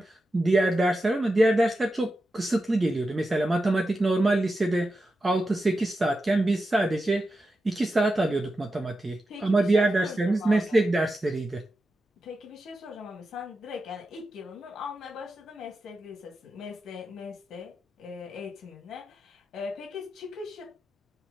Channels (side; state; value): both; normal; correlation 0.90